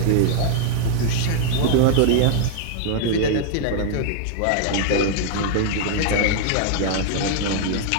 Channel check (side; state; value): both; different; correlation 0.00